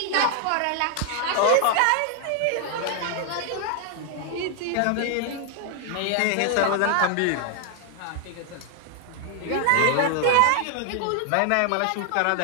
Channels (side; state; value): both; different; correlation 0.00